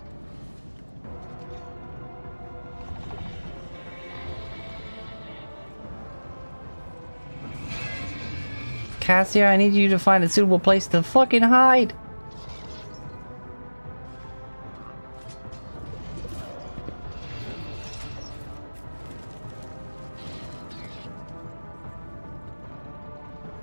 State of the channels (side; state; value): both; inverted; correlation -1.00